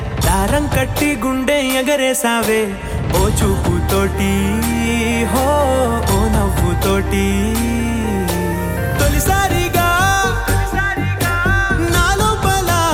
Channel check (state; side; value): identical; both; correlation 1.00